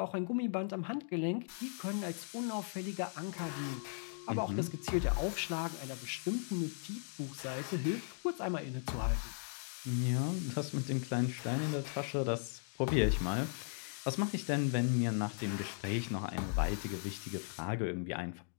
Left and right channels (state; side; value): silent; right; digital silence